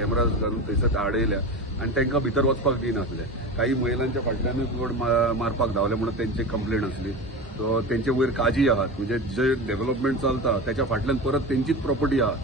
घालून थंयसर आडयल्या आणि तांकां भितर वचपाक दिनासले काही महिलांच्या फाटल्यानूच बोर्ड मारपाक धांवले म्हणून तेंची कंप्लेंट आसली सो तेंचे वयर काजी आहात म्हणजे जे डेव्हलपमेंट चलता त्याच्या फाटल्यान परत तेंचीच प्रॉपर्टी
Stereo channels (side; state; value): both; normal; correlation 0.26